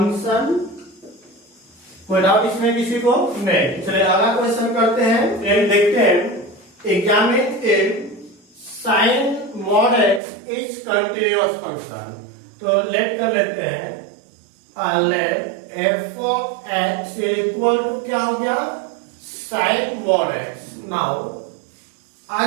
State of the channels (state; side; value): drops out; left; at 10.2 s